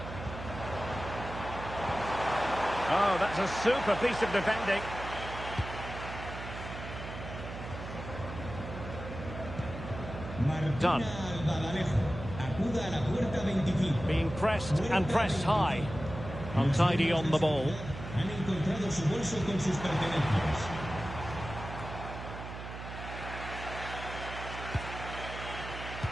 Oh, that's a super piece of defending. Done. Being pressed and pressed high. Untidy on the ball.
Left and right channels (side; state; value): right; noise; hum, 9 dB below the sound